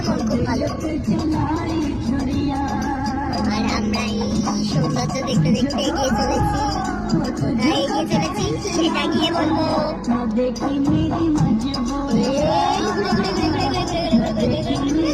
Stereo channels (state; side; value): identical; both; correlation 1.00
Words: মন খুব ভালো। আর আমরা এই সৌন্দর্য দেখতে দেখতে এগিয়ে চলেছি, সেটা গিয়ে বলবো।